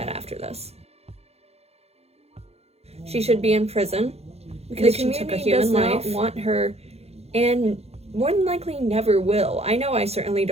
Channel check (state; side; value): late; left; 0.30 ms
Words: after this. She should be in prison because she took a human life. Does not want her, and more than likely never will. I know I certainly